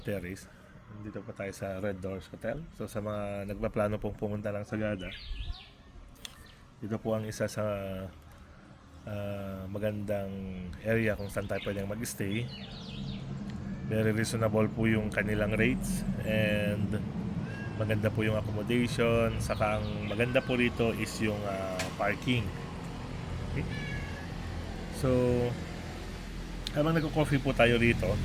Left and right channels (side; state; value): both; identical; correlation 1.00